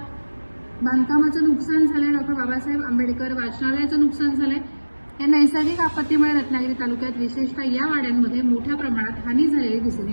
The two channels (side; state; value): both; inverted; correlation -1.00